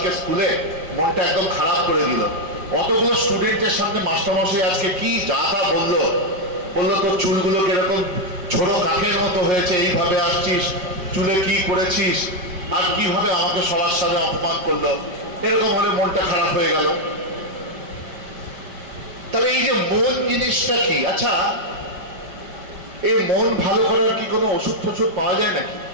স্কুলে, মনটা একদম খারাপ করে দিল। অতগুলো স্টুডেন্টের সামনে মাস্টারমশাই আজকে কি যা তা বললো তোর চুলগুলো কিরকম ছোট কাকের মতো হয়েছে, এইভাবে আসছিস, চুলে কি করেছিস, আর কিভাবে আমাকে সবার সাথে অপমান করলো। এরকম হলে মনটা খারাপ হয়ে গেল। তবে এই যে মন জিনিসটা কি? আচ্ছা, এই মন ভালো করার কি কোনো ওষুধ ফষুধ পাওয়া যায় নাকি?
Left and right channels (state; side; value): late; left; 5.1 ms